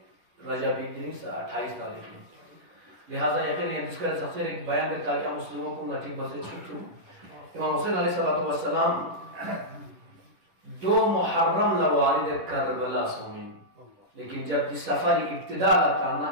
رجبی دن سے 28 تاریخ میں. لہذا یقین جس کا سفر ایک بیان کرتا ہے مسلموں کو نٹی بسے چھوٹوں. امام حسین علیہ السلام 2 محرم لوارد کربلا سومین، لیکن جب جس سفر ابتدا لاتا نا،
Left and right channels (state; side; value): late; left; 10 ms